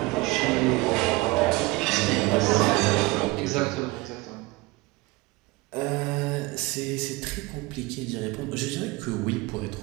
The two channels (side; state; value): left; quieter; 22.7 dB